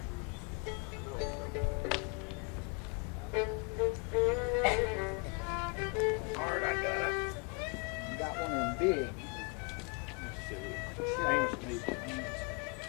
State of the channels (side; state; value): right; quieter; 32.6 dB